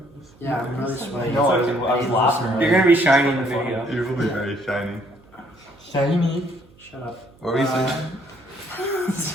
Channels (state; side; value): noise; right; hum, 27 dB below the sound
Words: Yeah, I'm really sweaty. No, I was laughing. You're gonna be shiny in the video. You will be very shiny. Shiny. Shut up. What were you saying?